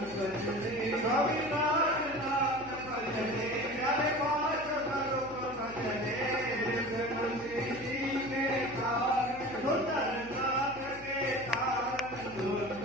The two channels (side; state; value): left; noise; hum, 19 dB below the sound